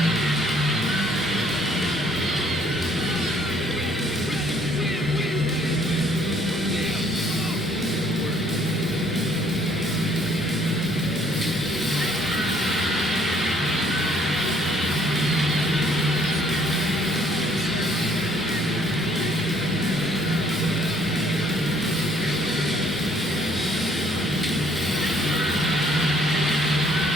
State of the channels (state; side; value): normal; both; correlation 0.63